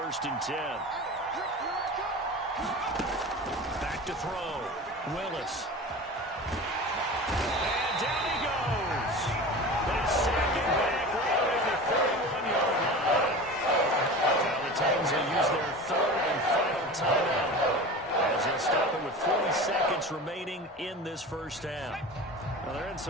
and 10. Back to throw. Willis. And down he goes. They sack it back right at the 31-yard line. Now the Titans will use their third and final timeout as they'll stop it with 40 seconds remaining in this first half. Well, they're in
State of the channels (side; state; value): both; normal; correlation 0.33